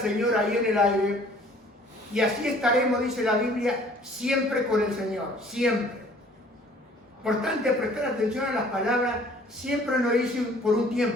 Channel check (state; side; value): normal; both; correlation 0.54